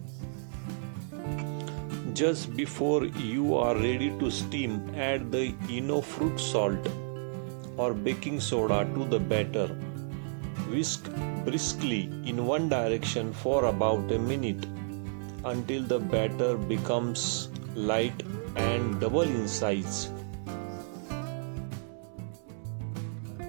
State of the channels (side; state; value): left; silent; 57 dB below the other